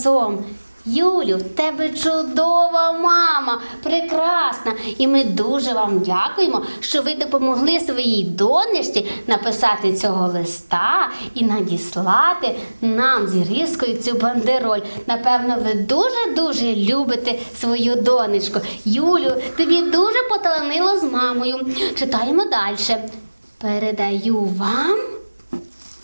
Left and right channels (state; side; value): inverted; both; correlation -1.00